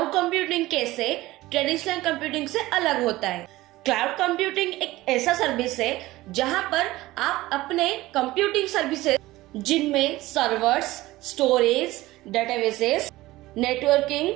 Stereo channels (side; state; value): left; quieter; 18.0 dB